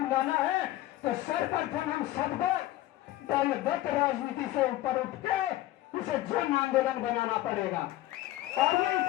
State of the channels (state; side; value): quieter; right; 15.6 dB